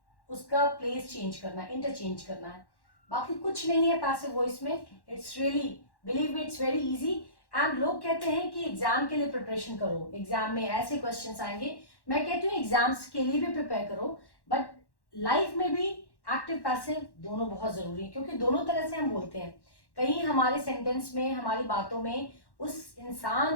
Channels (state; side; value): late; right; 1.1 ms